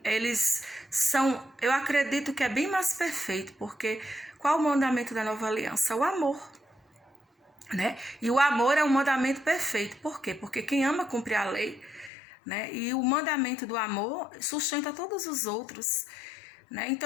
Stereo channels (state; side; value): drops out; right; at 12.1 s